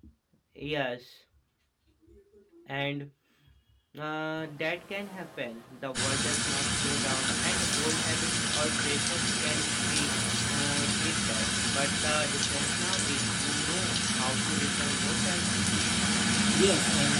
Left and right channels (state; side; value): identical; both; correlation 1.00